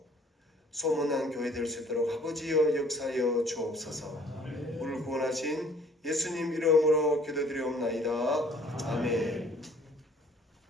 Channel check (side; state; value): both; normal; correlation 0.56